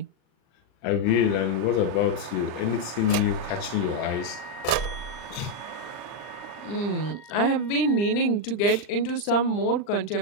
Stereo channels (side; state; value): right; late; 39 ms